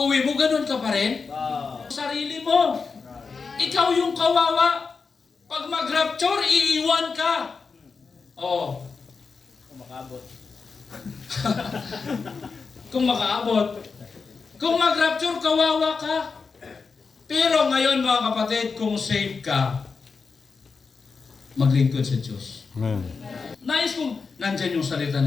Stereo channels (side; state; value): right; quieter; 4.9 dB